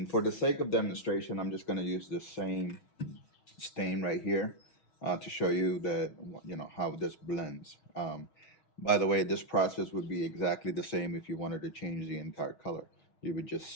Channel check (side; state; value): right; late; 6.2 ms